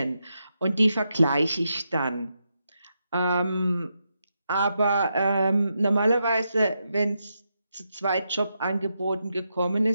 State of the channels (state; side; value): inverted; both; correlation -0.84